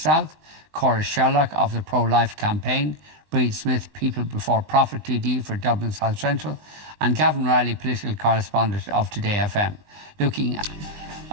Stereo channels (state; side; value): late; left; 19 ms